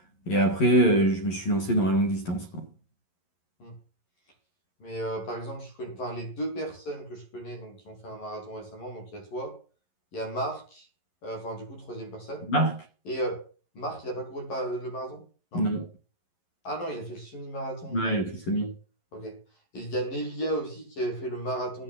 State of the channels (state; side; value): late; right; 11 ms